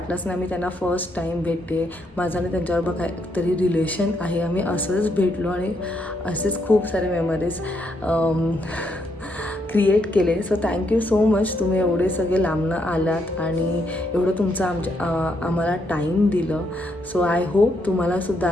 नाही मी त्यांना फर्स्ट टाईम भेटते, माझं आणि त्यांच्याबरोबर काहीतरी रिलेशन आहे, आम्ही असंच भेटलो आणि असेच खूप सारे मेमरीज क्रिएट केले. सो थँक्यू सो मच, तुम्ही एवढे सगळे लांबनं आलात आणि एवढं तुमचं आम्हाला टाईम दिलं. सो आय होप तुम्हाला सुद्धा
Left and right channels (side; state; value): both; normal; correlation 0.76